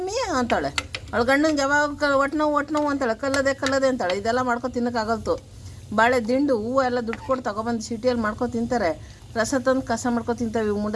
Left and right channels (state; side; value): identical; both; correlation 1.00